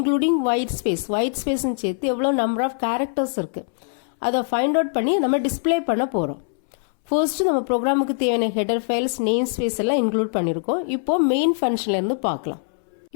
ஒயிட் ஸ்பேஸ்ன்னு சேர்த்து எவ்வளோ நம்பர் ஆஃப் கேரக்டர்ஸ் இருக்கு, அதை ஃபைண்ட் அவுட் பண்ணி நம்ம டிஸ்பிளே பண்ண போகிறோம். ஃபர்ஸ்ட் நம்ம ப்ரோக்ராமுக்கு தேவையான ஹெடர் ஃபைல்ஸ், நேம் ஸ்பேஸ் எல்லாம் இன்க்ளூட் பண்ணியிருக்கோம். இப்போ மெயின் ஃபங்க்ஷன்ல இருந்து பார்க்கலாம்.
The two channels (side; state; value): right; silent; 64 dB below the other